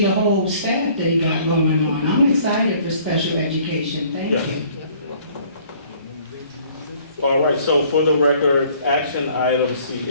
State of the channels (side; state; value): both; inverted; correlation -0.56